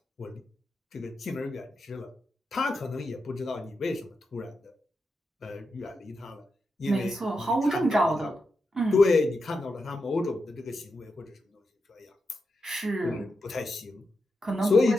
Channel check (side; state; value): both; normal; correlation 0.87